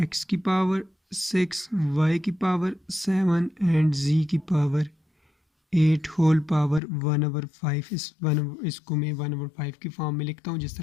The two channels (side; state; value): right; drops out; at 6.8 s